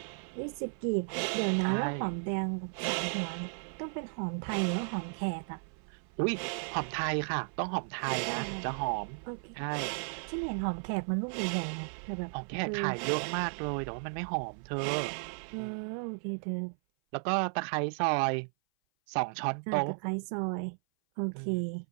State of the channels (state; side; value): silent; left; 55 dB below the other